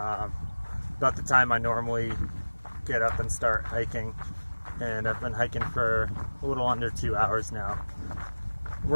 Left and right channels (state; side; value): inverted; both; correlation -1.00